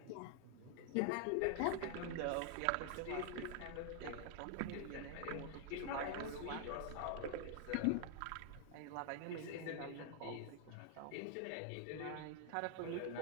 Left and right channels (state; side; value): different; both; correlation 0.00